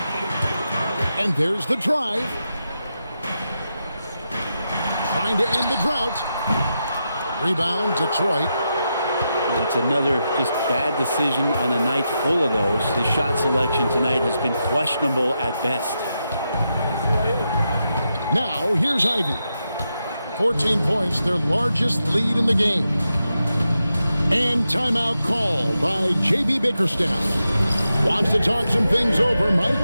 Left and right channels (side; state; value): both; inverted; correlation -0.87